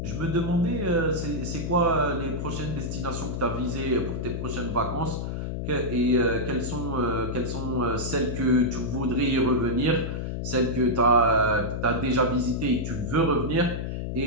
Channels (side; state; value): left; noise; hum, 4 dB below the sound